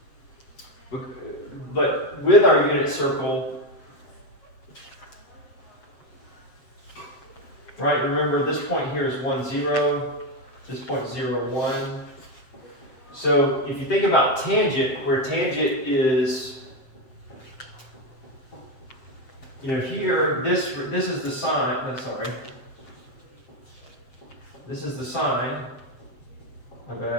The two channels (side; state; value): right; late; 7.6 ms